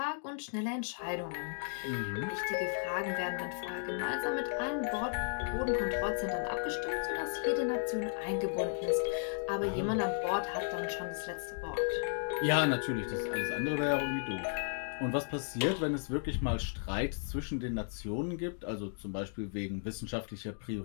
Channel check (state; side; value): silent; right; digital silence